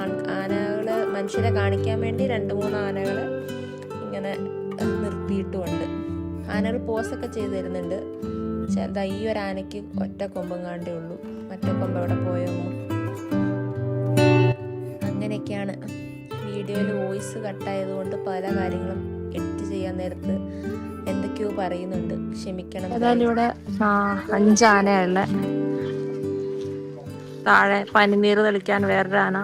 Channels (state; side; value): identical; both; correlation 1.00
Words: ആനകൾ മനുഷ്യരെ കാണിക്കാൻ വേണ്ടി 2-3 ആനകൾ ഇങ്ങനെ നിർത്തിയിട്ടുമുണ്ട്. ആനകൾ പോസൊക്കെ ചെയ്ത് തരുന്നുണ്ട്. ചെറുതാ ഈ ഒരു ആനയ്ക്ക് ഒറ്റ കൊമ്പം കാണ്ടേ ഉള്ളൂ, മറ്റേ കൊമ്പ് എവിടെ പോയോ. അങ്ങനെയൊക്കെയാണ്. വീഡിയോയിൽ വോയിസ് കട്ടായതുകൊണ്ട് പല കാര്യങ്ങളും എഡിറ്റ് ചെയ്യാൻ നേരത്ത് എന്തൊക്കെയോ പറയുന്നുണ്ട്, ക്ഷമിക്കണം. ഏതായാലും ഇവിടെ 5 ആനയുള്ള, താഴെ പനിനീർ തെളിക്കാൻ വേറൊരു ആന,